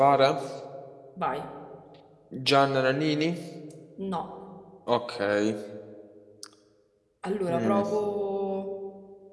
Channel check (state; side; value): identical; both; correlation 1.00